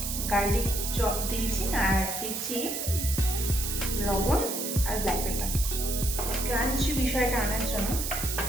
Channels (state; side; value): noise; right; hiss, 3 dB below the sound